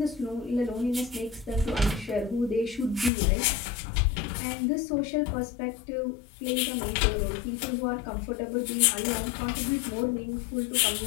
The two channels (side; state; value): right; drops out; at 3.1 s